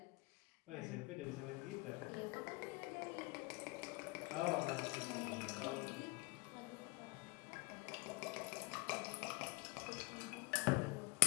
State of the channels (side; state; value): right; quieter; 25.3 dB